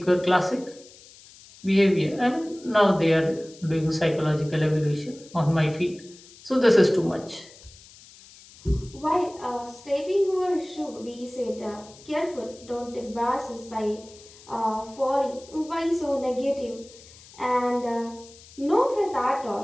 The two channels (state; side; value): noise; left; hiss, 22 dB below the sound